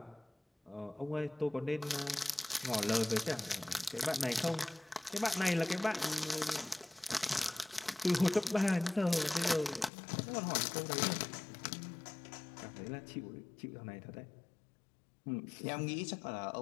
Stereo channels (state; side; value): drops out; right; at 9.9 s